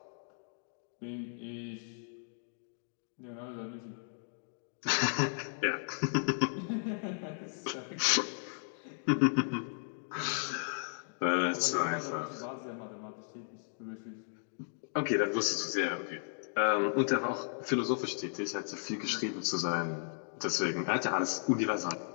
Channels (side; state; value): right; silent; digital silence